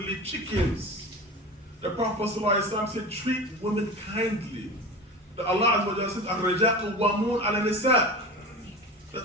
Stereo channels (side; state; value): both; normal; correlation 0.31